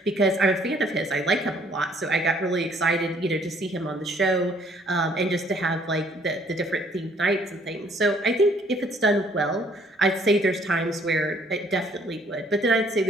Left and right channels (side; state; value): both; normal; correlation 0.62